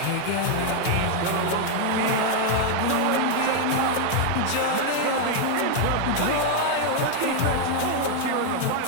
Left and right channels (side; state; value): both; different; correlation 0.00